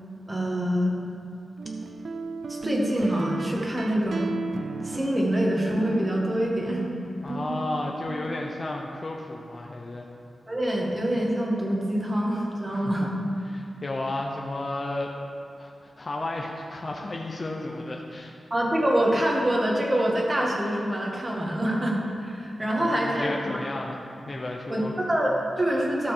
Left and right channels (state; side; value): normal; both; correlation 0.93